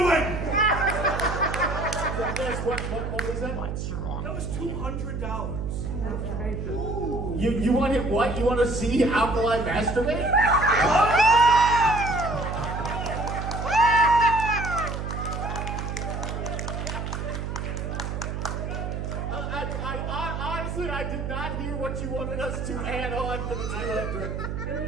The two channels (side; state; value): right; noise; hum, 4 dB below the sound